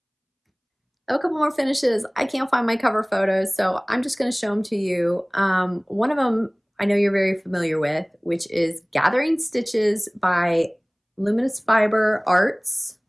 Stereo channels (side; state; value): both; identical; correlation 1.00